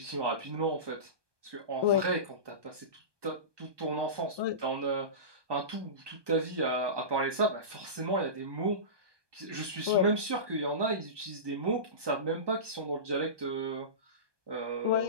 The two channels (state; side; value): late; left; 1.2 ms